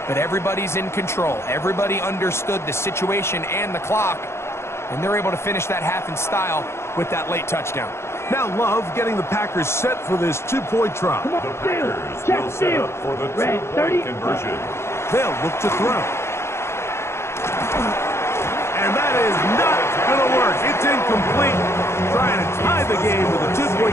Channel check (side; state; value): right; late; 0.13 ms